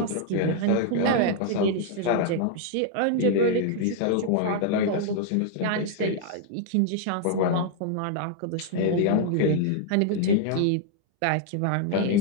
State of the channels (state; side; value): different; both; correlation 0.00